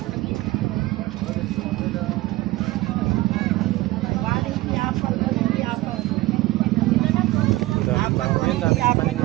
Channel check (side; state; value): left; quieter; 18.7 dB